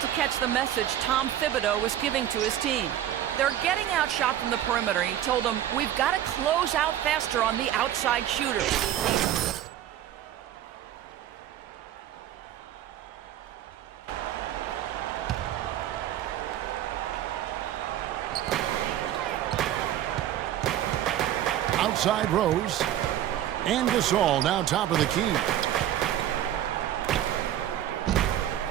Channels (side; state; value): left; quieter; 11.7 dB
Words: to catch the message Tom Thibodeau was giving to his team. They're getting outshot from the perimeter. He told them, we've got to close out faster on the outside shooters. Outside Rose. And Gasol now top of the key.